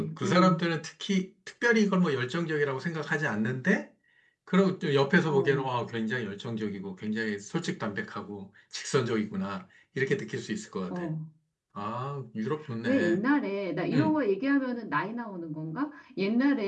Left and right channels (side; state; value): both; identical; correlation 1.00